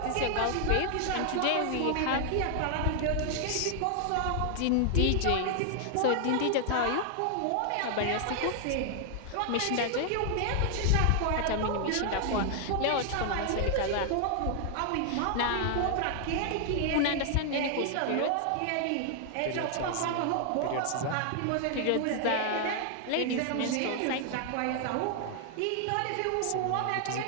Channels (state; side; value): different; both; correlation 0.00